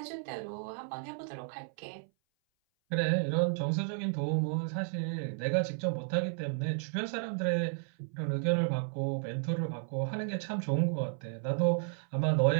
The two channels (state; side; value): silent; left; 56 dB below the other